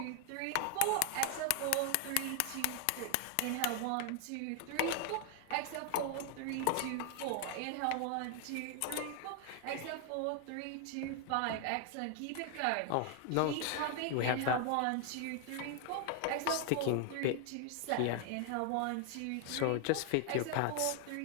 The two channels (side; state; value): both; different; correlation 0.00